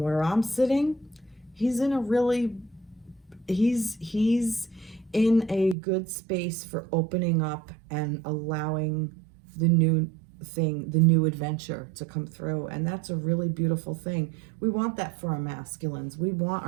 I'm sitting, he's in a really, he's in a good space for opening up and allowing the new thing, the new adventure to come through. And that's a really beautiful thing. We want that for our masculines. We want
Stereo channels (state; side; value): drops out; left; at 5.8 s